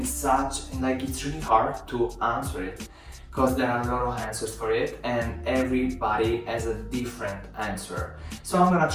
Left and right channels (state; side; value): identical; both; correlation 1.00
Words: it's really hard to answer it because there are a lot of answers for it and everybody has a different answer. So I'm gonna